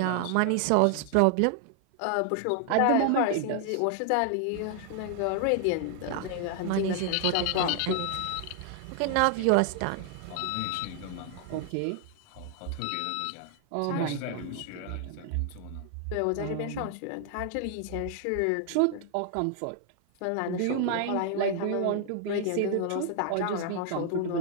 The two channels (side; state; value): both; different; correlation 0.00